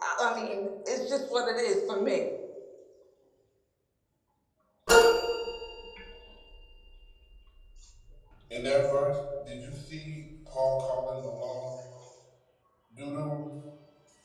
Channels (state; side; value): identical; both; correlation 1.00